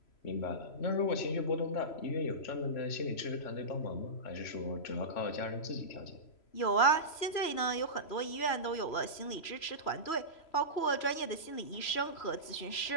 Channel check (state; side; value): late; right; 3.0 ms